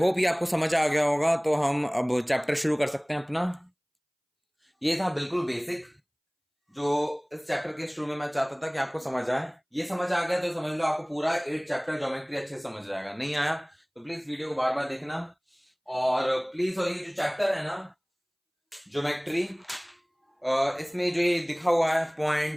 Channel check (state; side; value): identical; both; correlation 1.00